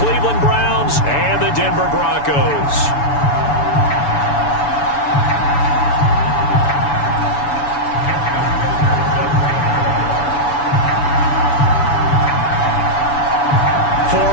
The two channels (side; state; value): right; late; 7.0 ms